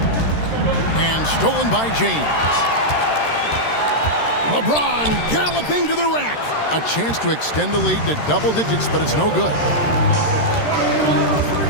And stolen by James. LeBron galloping to the rack. A chance to extend the lead to double digits, but it's no good.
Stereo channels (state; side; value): late; right; 13 ms